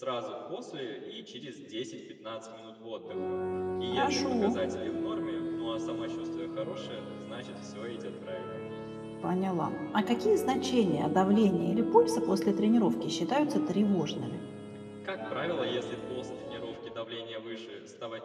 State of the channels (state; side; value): identical; both; correlation 1.00